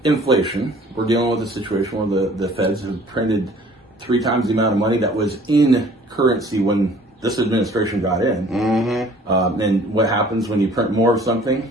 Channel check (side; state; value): both; normal; correlation 0.53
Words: inflation, we're dealing with a situation where the Feds have printed 3 times the amount of money that was in currency when this administration got in. Mm-hmm. And what happens when you print more of